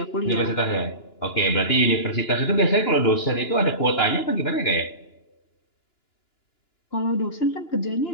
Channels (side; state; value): right; late; 2.9 ms